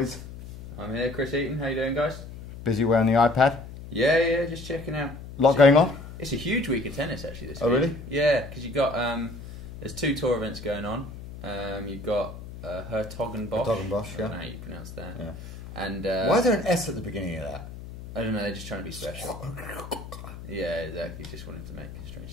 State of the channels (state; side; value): noise; left; hum, 12 dB below the sound